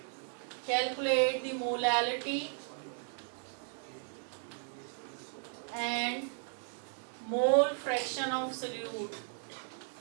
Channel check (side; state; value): left; silent; 54 dB below the other